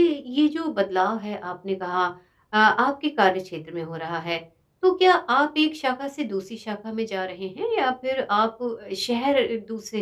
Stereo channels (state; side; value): identical; both; correlation 1.00